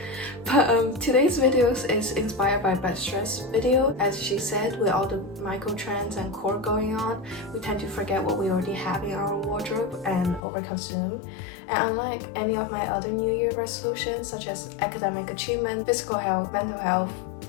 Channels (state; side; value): drops out; right; at 10.4 s